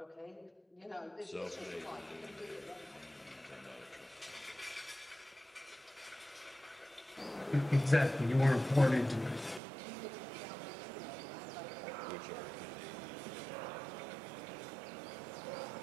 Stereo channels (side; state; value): left; drops out; at 9.6 s